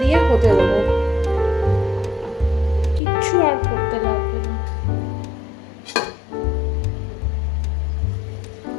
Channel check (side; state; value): right; drops out; at 3.0 s